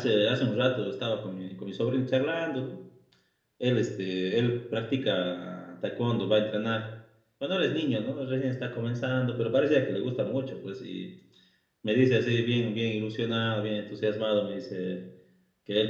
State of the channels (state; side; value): identical; both; correlation 1.00